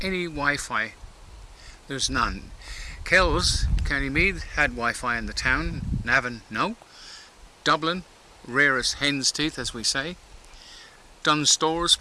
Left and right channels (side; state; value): both; identical; correlation 1.00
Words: any Wi-Fi. There's none. Kells, County Meath, had Wi-Fi in the town. Navan, no. Dublin, rarest hen's teeth, as we say. Dunnes Stores,